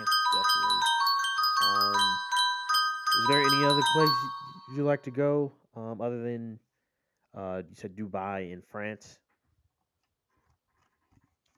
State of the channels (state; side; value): identical; both; correlation 1.00